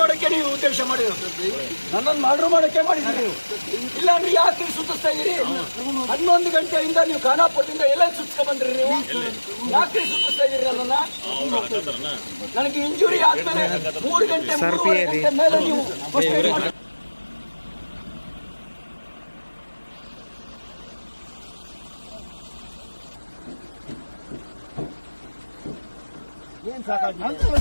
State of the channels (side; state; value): both; inverted; correlation -1.00